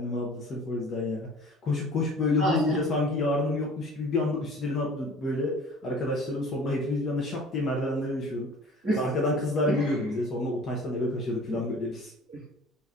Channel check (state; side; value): normal; both; correlation 0.45